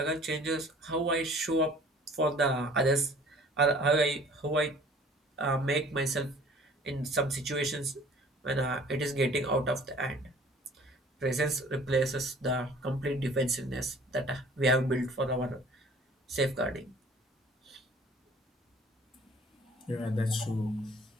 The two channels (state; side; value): normal; both; correlation 0.52